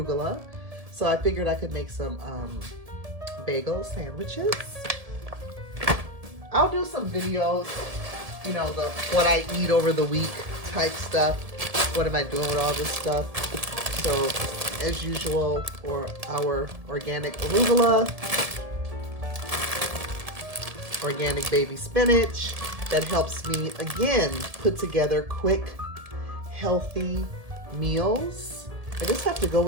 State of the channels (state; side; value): late; left; 1.7 ms